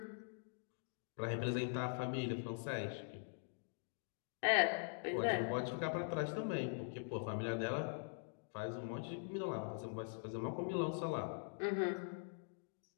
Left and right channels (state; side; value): silent; right; digital silence